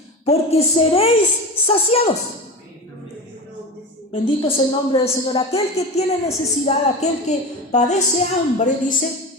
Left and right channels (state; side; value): normal; both; correlation 0.27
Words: porque seréis saciados. Bendito es el nombre del Señor. Aquel que tiene necesidad, aquel que padece hambre,